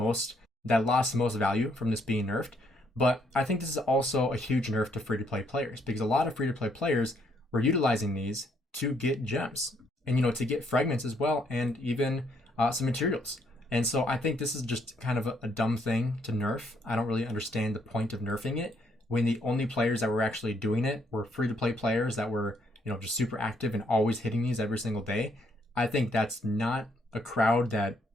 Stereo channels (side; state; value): both; normal; correlation 0.71